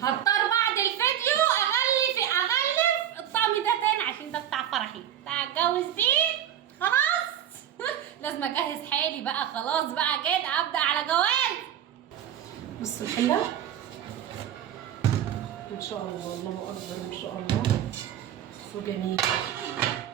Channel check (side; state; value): left; quieter; 10.5 dB